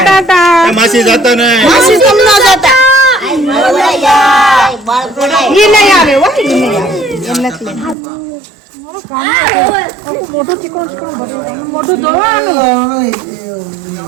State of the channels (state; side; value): drops out; left; at 8.0 s